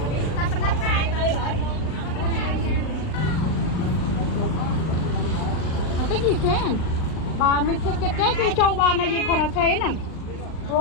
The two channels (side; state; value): right; late; 39 ms